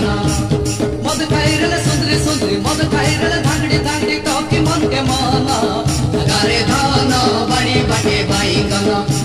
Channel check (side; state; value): both; identical; correlation 1.00